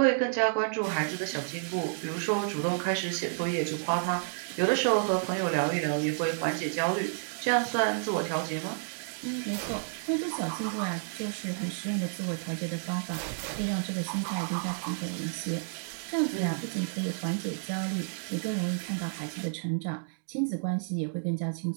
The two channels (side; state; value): left; silent; digital silence